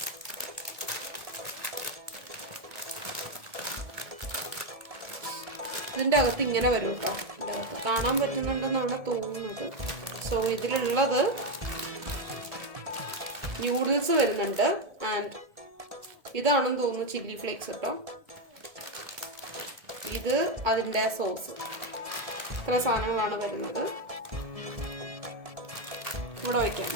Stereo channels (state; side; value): late; left; 1.7 ms